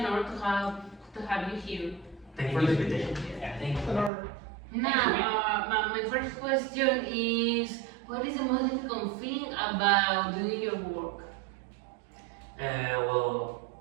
honor to have you here. Thank you for the invitation. Yeah, thank you. Now, my first question is, what is the most difficult thing about doing your work? Well,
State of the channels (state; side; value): drops out; left; at 4.1 s